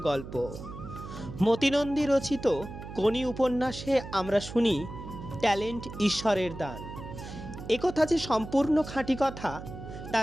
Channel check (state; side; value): noise; right; hum, 11 dB below the sound